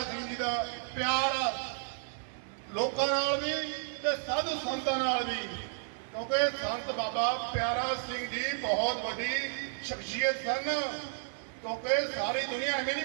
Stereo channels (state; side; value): silent; left; digital silence